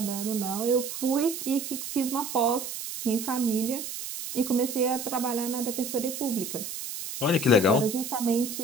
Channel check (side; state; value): right; noise; hiss, 7 dB below the sound